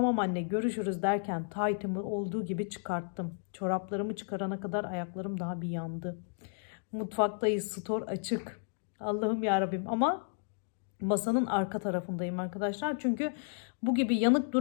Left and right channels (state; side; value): silent; right; digital silence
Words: anne görüşürüz derken taytımı olduğu gibi çıkarttım. Çoraplarımı çıkarana kadar ayaklarım daha bir yandı. Mutfaktayız, stor açık. Allah'ım yarabbim, ama masanın arka tarafındayım arkadaşlar. Çünkü bu gibi yanık